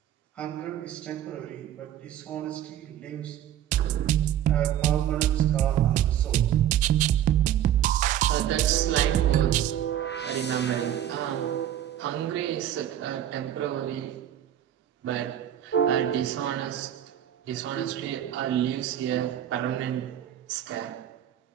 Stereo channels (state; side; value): quieter; left; 11.1 dB